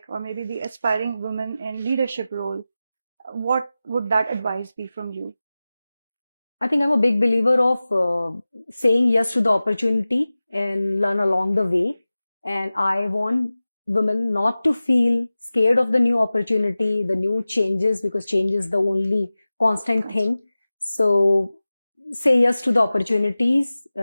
or maybe the aspiring women in leadership role, what would that advice be from you? I think I'm a big believer of saying yes to the opportunity and learn along the way. And I want women not to feel scared of the new opportunity, the new changes, because change is the only constant thing. So say yes to the opportunities,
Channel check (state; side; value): inverted; both; correlation -0.96